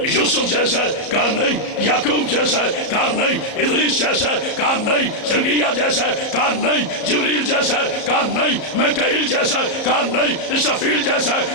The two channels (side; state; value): right; late; 34 ms